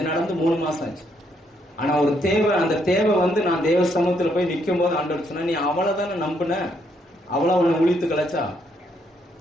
நடந்து 3 மாசம் ஆச்சு. ஆனா ஒரு தேவை, அந்த தேவை வந்து நான் தேவ சமூகத்துல போய் நிக்கும் போது ஆண்டவர் சொன்னா, நீ அவ்வளவுதானே நம்பின, அவ்வளவு உன்னை ஒழித்து கலைச்சா.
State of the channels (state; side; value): normal; both; correlation 0.73